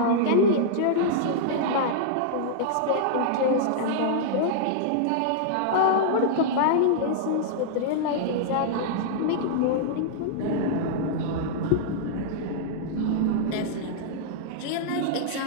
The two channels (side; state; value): both; different; correlation -0.02